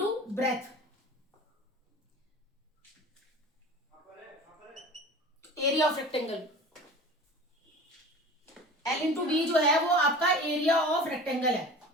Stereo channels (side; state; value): both; normal; correlation 0.38